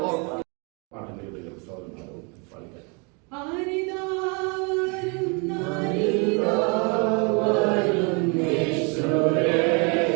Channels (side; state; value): left; quieter; 33.2 dB